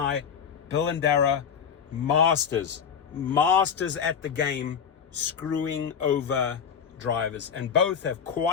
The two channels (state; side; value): quieter; right; 7.3 dB